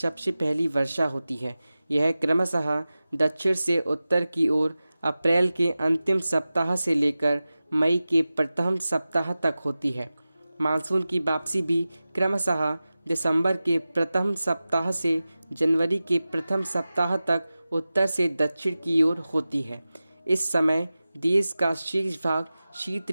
पहली वर्षा होती है। यह क्रमशः दक्षिण से उत्तर की ओर अप्रैल के अंतिम सप्ताह से लेकर मई के प्रथम सप्ताह तक होती है। मानसून की वापसी भी क्रमशः दिसंबर के प्रथम सप्ताह से जनवरी के प्रथम सप्ताह तक उत्तर से दक्षिण की ओर होती है। इस समय देश का शेष भाग शीत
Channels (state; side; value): inverted; both; correlation -0.95